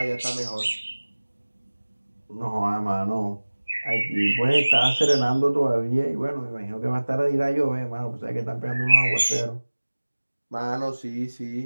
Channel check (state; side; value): inverted; both; correlation -1.00